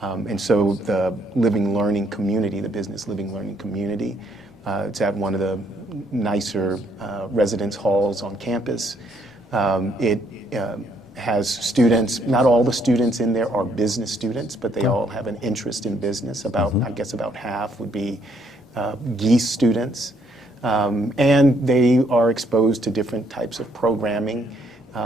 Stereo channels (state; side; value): normal; both; correlation 0.69